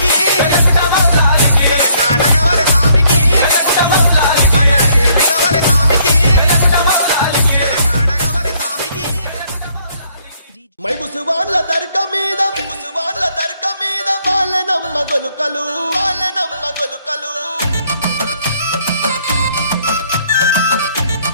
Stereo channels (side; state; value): both; inverted; correlation -0.66